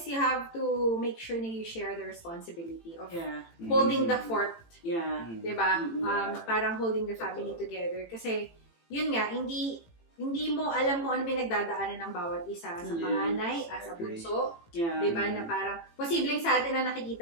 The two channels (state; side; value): late; right; 18 ms